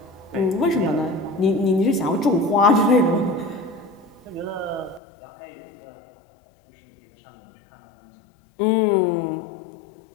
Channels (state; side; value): drops out; right; at 5.0 s